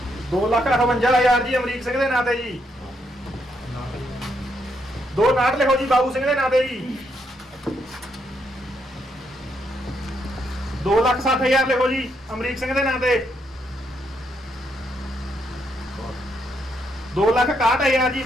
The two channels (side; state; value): both; normal; correlation 0.77